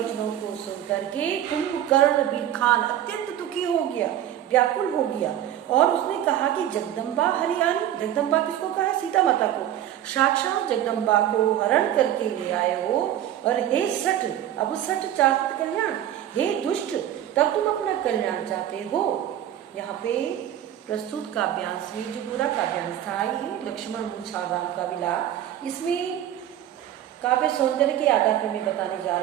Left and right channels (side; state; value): left; quieter; 11.6 dB